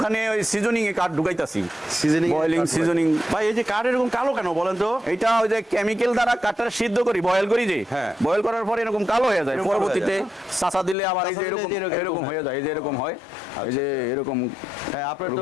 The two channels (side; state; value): right; drops out; at 11.0 s